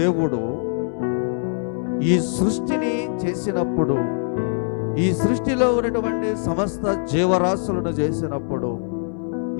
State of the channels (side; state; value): right; silent; 64 dB below the other